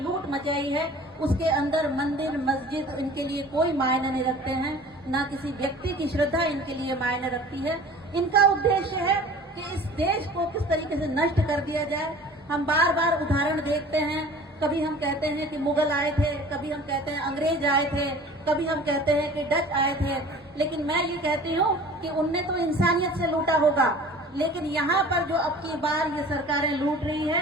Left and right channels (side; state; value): both; normal; correlation 0.44